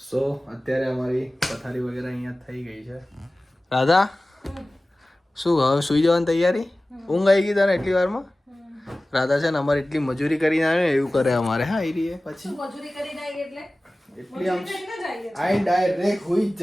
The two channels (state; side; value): normal; both; correlation 0.97